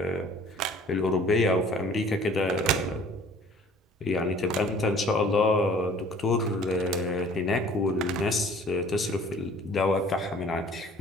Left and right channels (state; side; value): normal; both; correlation 0.51